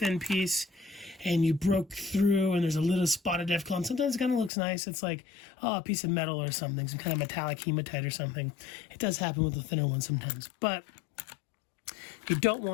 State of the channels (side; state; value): right; drops out; at 4.5 s